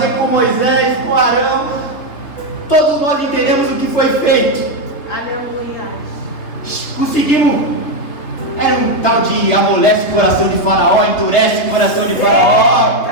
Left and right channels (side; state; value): right; late; 3.3 ms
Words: com Moisés, com Arão. Todos nós entendemos o que foi feito. Aleluia. Conseguimos. Era um tal de amolece o coração de Faraó, endurece o coração de Faraó.